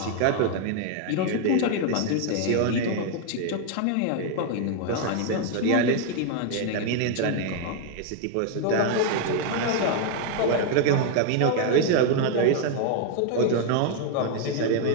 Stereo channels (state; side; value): different; both; correlation 0.00